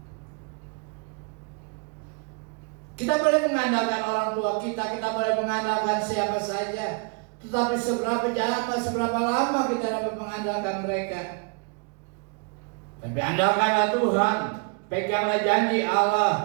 Kita boleh mengandalkan orang tua kita boleh mengandalkan siapa saja, tetapi seberapa lama kita dapat mengandalkan mereka? Tapi andalkanlah Tuhan, peganglah janji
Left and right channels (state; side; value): quieter; left; 35.0 dB